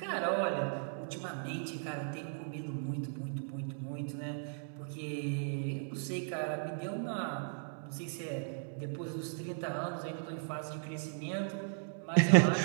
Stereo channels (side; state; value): left; silent; digital silence